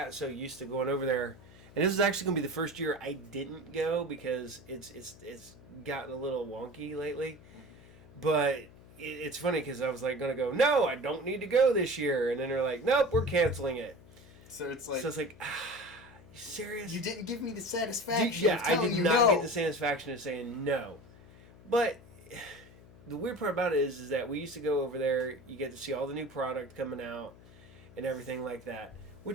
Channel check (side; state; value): left; noise; hum, 22 dB below the sound